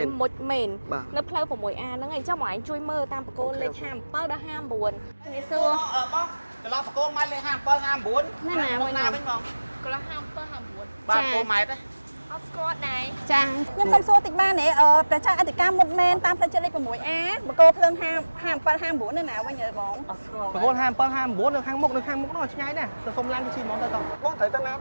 មុជមែននៅផ្លូវ 6A ហ្នឹងហើយអញ្ចឹងមកឯងជួយមើលតាមបកគោលលេខ57ដល់59នេះសួរបងកន្លងបកគោម៉ែត្រលេខ57 59ណាណាវិញបងកន្លង57 59បាទគោម៉ែត្រ អត់ស្គាល់ដែរ ចាខ្ញុំសុំសួរតិចបានទេប្រជាអធិការមុតមែនតាមផ្លូវចិត្តលេខ 6A បកគោភ្លើង57 59នៅណាវិញអើបង បកគោ57 59នៅខាងមុខនោះឆ្ងាយណាស់ទៅសុំឡានទៅជិះហ្មងទៅតោះ បងត្រូវទៅណា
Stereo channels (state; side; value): inverted; both; correlation -1.00